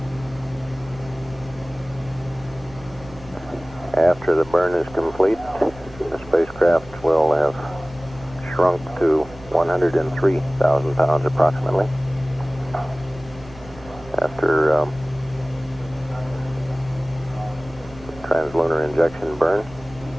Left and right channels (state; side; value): noise; right; hum, 20 dB below the sound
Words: After the burn is complete, the spacecraft will have shrunk to 103,000 pounds approximately. After translunar injection burn,